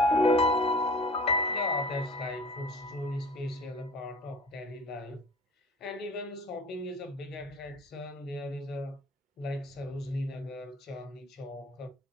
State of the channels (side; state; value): both; normal; correlation 0.43